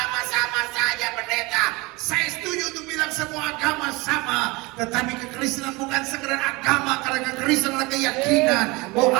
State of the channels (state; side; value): quieter; left; 24.5 dB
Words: sama saja pendeta. Saya setuju untuk bilang semua agama sama, tetapi kekristenan bukan sekedar agama, karena kekristenan adalah keyakinan